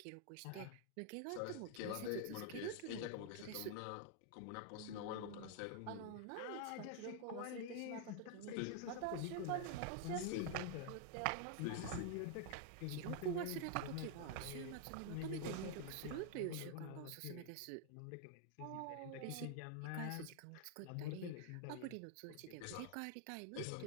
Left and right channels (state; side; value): different; both; correlation 0.00